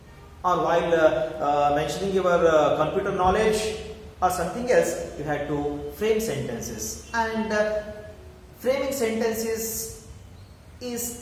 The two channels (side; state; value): both; identical; correlation 1.00